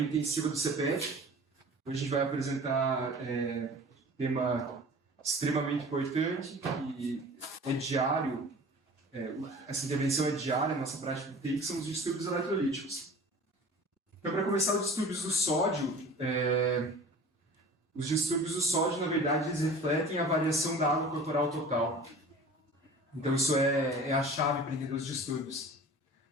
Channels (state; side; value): normal; both; correlation 0.42